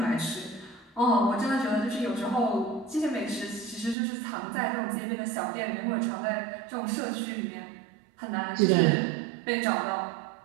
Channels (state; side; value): drops out; left; at 4.0 s